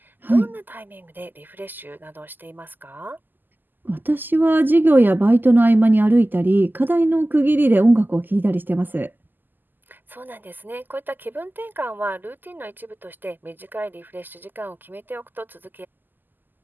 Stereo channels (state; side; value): late; left; 0.089 ms